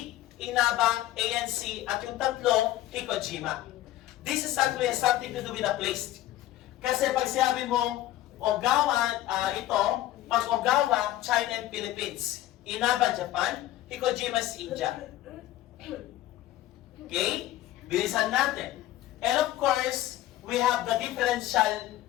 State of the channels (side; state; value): right; quieter; 14.6 dB